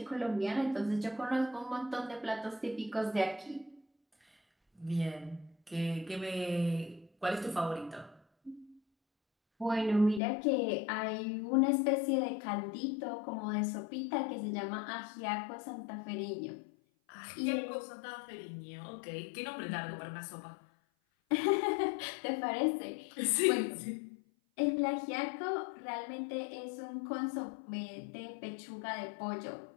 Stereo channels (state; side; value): drops out; right; at 10.2 s